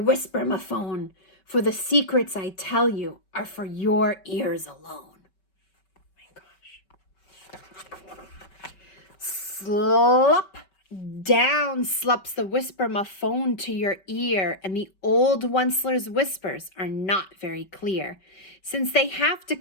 for the secrets I tell you are for your ears alone. Slop down slops the whisper-ma-phone to your ear, and the old Onceler's whispers are not very clear, since they have to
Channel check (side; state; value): right; late; 5.2 ms